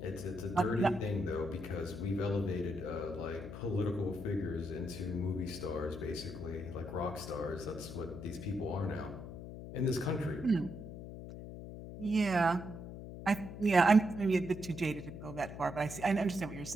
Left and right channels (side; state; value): left; noise; hum, 10 dB below the sound